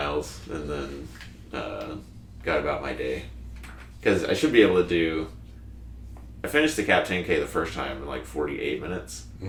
and then got about my day. Because I should be able to do... I finished the Cab 10K the first time in like 48 minutes.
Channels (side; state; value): both; identical; correlation 1.00